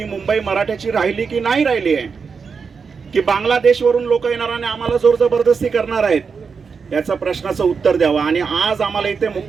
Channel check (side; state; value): left; quieter; 5.5 dB